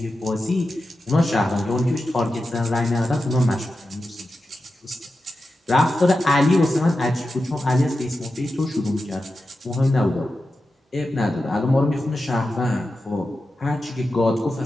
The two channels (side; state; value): both; normal; correlation 0.91